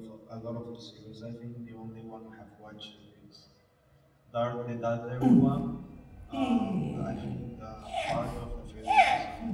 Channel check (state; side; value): identical; both; correlation 1.00